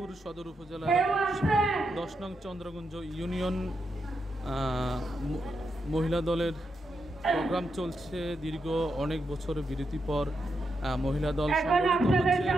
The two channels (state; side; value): normal; both; correlation 0.84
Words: সদর উপজেলার 10 নং চন্দ্রগঞ্জ ইউনিয়ন মহিলা দলের প্রোগ্রাম চলছে। দীর্ঘ অনেক বছর বিরতির পর মহিলা দল সংগঠিত হচ্ছে